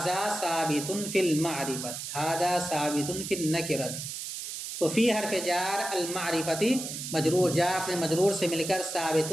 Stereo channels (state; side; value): noise; right; hiss, 7 dB below the sound